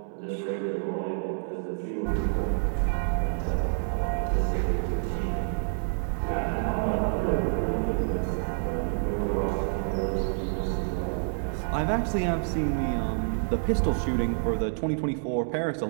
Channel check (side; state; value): left; silent; 59 dB below the other